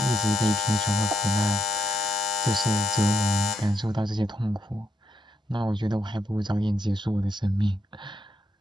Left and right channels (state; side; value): normal; both; correlation 0.80